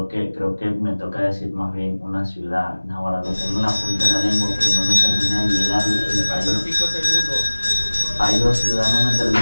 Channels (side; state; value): both; inverted; correlation -1.00